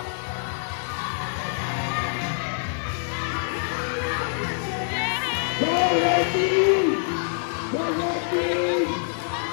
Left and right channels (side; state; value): right; silent; digital silence